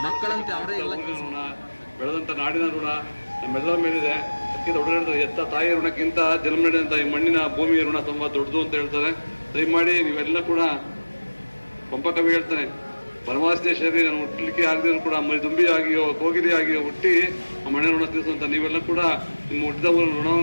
ಮಕ್ಕಳಂತೆ ಅವರೇ ಎಲ್ಲ ಬೆಳೆದಂತ ನಾಡಿನ ಋಣ ನಮ್ಮೆಲ್ಲರ ಮೇಲಿದೆ. ಅದಕ್ಕಿಂತ ದೊಡ್ಡ ಎತ್ತ ತಾಯಿಯ ಋಣಕ್ಕಿಂತ ಜನ್ಮ ನೀಡಿದಂತ ಈ ಮಣ್ಣಿನ ಭೂಮಿಯ ಋಣ ತುಂಬಾ ದೊಡ್ಡದು ಅಂತ ಹೇಳ್ತಾರೆ. ದಯಮಾಡಿ ನೀವೆಲ್ಲ ಕೂಡ ಪಂಪ ಕವಿ ಹೇಳ್ತಾನೆ, ಪರಮಾಸ್ತಿಯ ಶರೀರ ನಾನು ಹುಟ್ಟಲಿಕ್ಕೆ ಆಗದಿದ್ರು ಕೂಡ ದುಂಬಿ ಆಗಿಯೋ ಕೋಗಿಲೆ ಆಗಿಯೋ ಹುಟ್ಟಿ ಆ ಮಣ್ಣಿನ ಋಣ ತೀರಿಸುವಂತ ನೀವೆಲ್ಲ ಕೂಡ ನಿಮ್ಮ ಹುಟ್ಟಿದ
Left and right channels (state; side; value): inverted; both; correlation -1.00